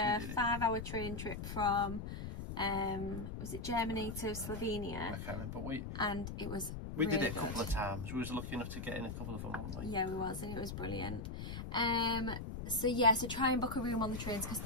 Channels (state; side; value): noise; left; rumble, 6 dB below the sound